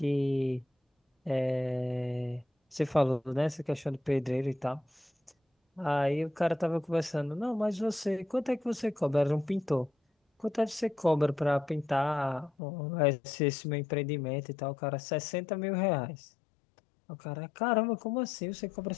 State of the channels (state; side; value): drops out; right; at 12.5 s